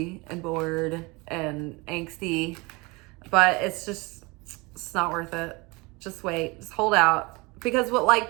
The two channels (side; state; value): left; quieter; 25.7 dB